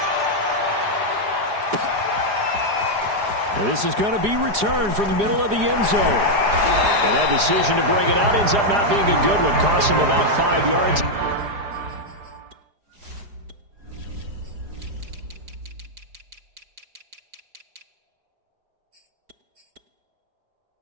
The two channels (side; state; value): left; late; 4.9 ms